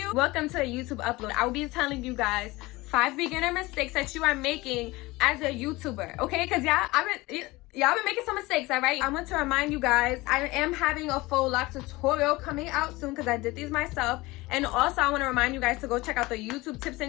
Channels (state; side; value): quieter; right; 21.1 dB